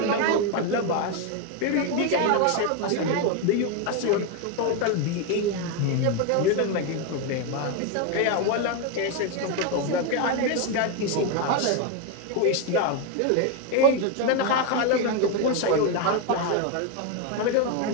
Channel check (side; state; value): both; different; correlation 0.02